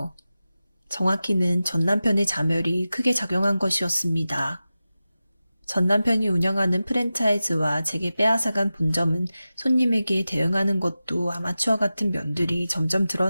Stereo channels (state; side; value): inverted; both; correlation -0.94